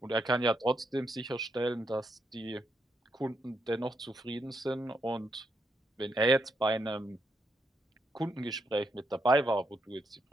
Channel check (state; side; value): normal; both; correlation 0.79